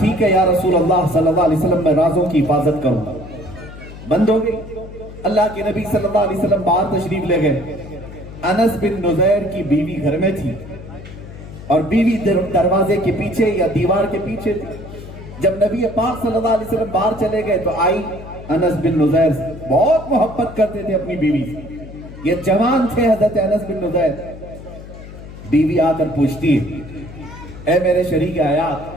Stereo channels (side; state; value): left; noise; hum, 14 dB below the sound